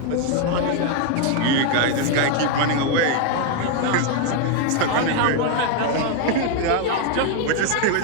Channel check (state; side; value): different; both; correlation 0.01